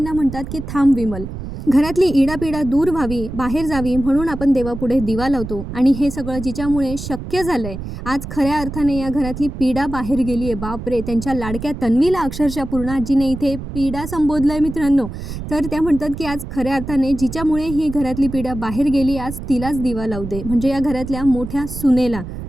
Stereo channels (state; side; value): noise; right; rumble, 9 dB below the sound